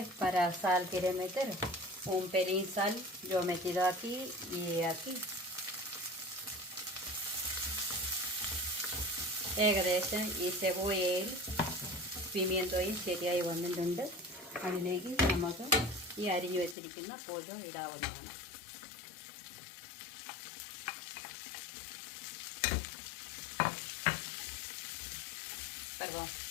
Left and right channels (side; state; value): right; drops out; at 16.8 s